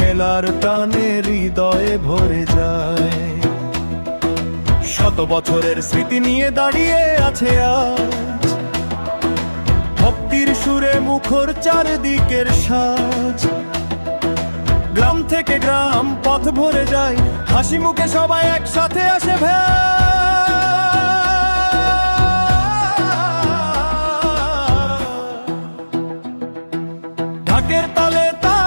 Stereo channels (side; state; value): both; inverted; correlation -1.00